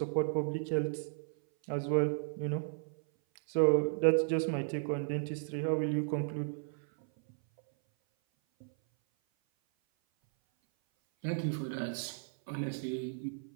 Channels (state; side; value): silent; left; 55 dB below the other